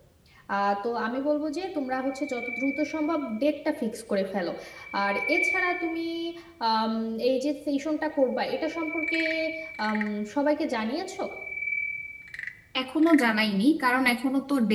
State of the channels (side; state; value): both; identical; correlation 1.00